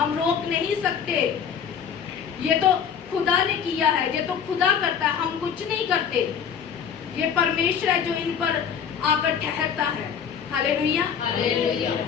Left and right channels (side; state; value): right; quieter; 7.5 dB